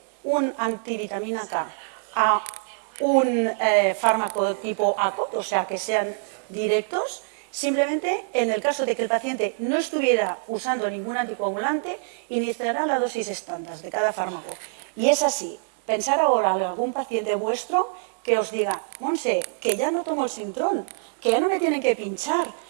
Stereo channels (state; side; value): silent; left; 61 dB below the other